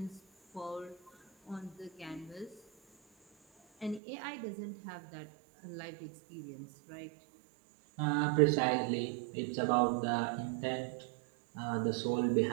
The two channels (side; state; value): left; drops out; at 4.0 s